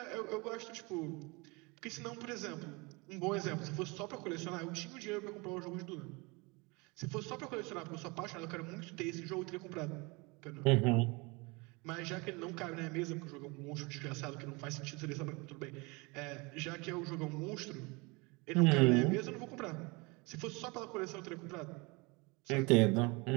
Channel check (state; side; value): quieter; left; 27.0 dB